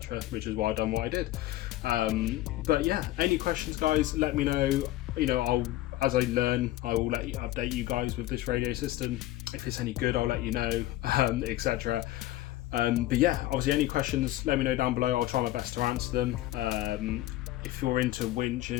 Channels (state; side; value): quieter; right; 15.6 dB